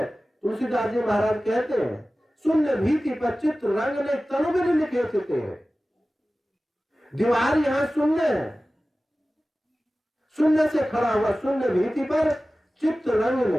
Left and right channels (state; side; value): normal; both; correlation 0.96